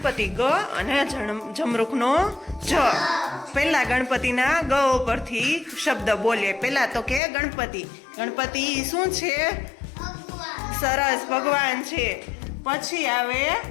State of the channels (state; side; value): drops out; right; at 7.2 s